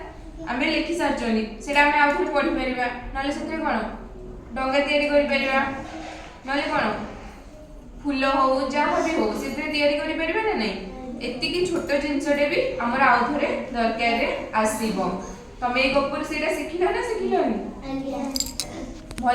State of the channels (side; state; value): both; identical; correlation 1.00